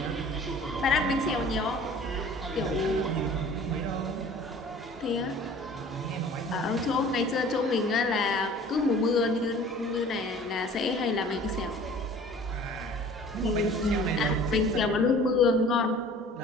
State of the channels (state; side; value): normal; both; correlation 0.47